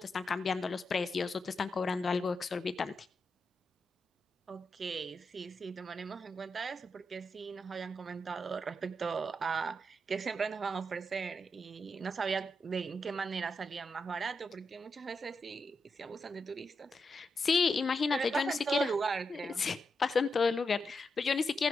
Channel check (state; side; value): normal; both; correlation 0.85